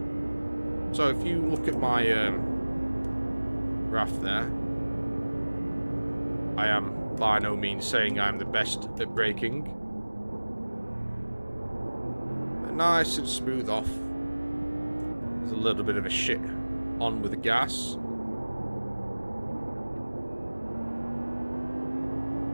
So if you look at my graph there, I am by no means saying I'm the best at braking. But nice and smooth off. There's a little bit of a shit on with the gas.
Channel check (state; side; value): inverted; both; correlation -1.00